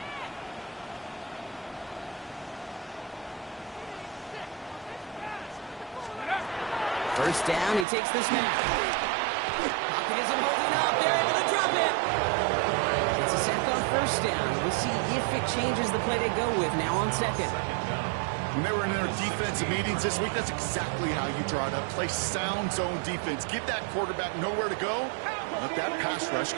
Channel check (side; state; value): left; drops out; at 7.9 s